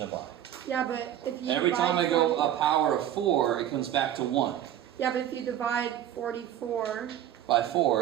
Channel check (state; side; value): quieter; left; 11.3 dB